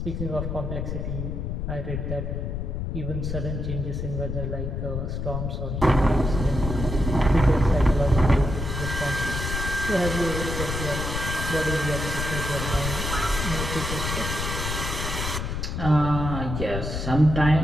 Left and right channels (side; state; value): left; noise; rumble, 3 dB below the sound